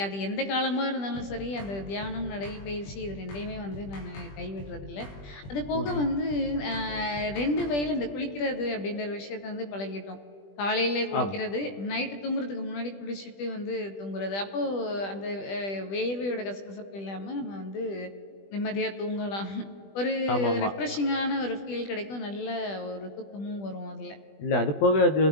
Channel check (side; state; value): right; late; 20 ms